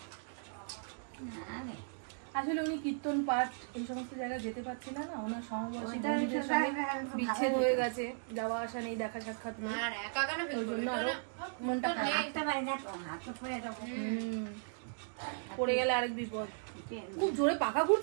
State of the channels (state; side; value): silent; left; digital silence